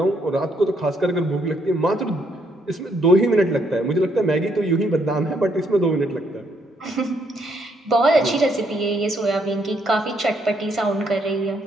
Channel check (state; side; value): normal; both; correlation 0.72